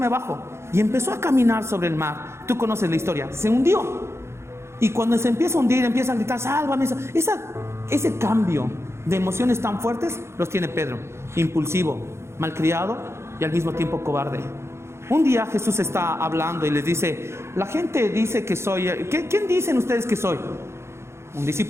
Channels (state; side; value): late; left; 0.13 ms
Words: bajo. Y empezó a caminar sobre el mar. Tú conoces la historia, se hundió. Y cuando se empieza a hundir, empieza a gritar, sálvame. Ese cambio de emociones tan fuertes los tiene Pedro. Impulsivo, malcriado y al mismo tiempo cobarde. Un día Jesús está hablando y les dice, la gente dice que soy, ¿quién dicen ustedes que soy? Un